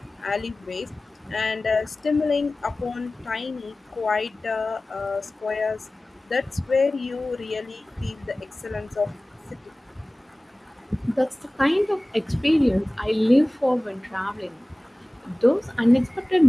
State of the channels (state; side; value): normal; both; correlation 0.98